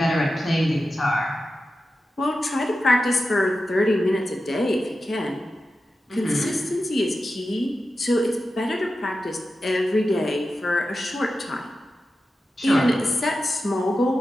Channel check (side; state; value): both; normal; correlation 0.92